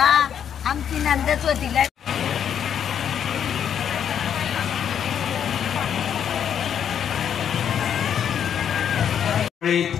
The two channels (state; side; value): quieter; right; 8.7 dB